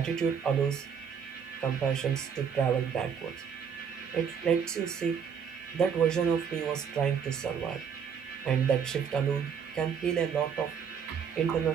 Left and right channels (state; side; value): quieter; left; 7.2 dB